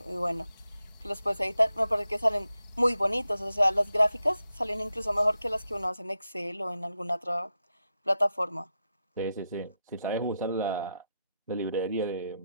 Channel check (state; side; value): inverted; both; correlation -0.87